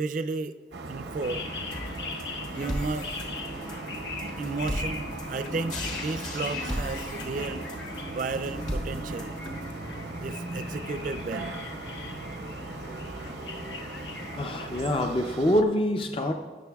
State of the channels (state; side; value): normal; both; correlation 0.57